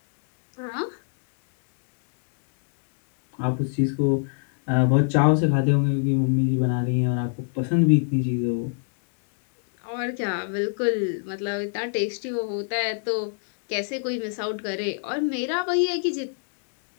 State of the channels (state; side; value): silent; right; digital silence